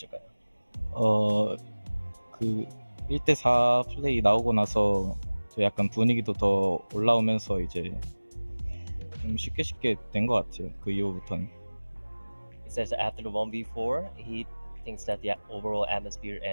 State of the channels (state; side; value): inverted; both; correlation -1.00